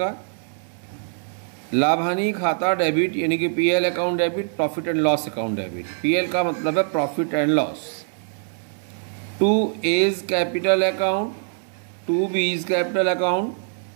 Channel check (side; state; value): left; silent; 59 dB below the other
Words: लाभ हानि खाता डेबिट यानी कि PL account debit, profit and loss account debit. PL का मतलब है profit and loss. 2A is capital account, 2B is capital account,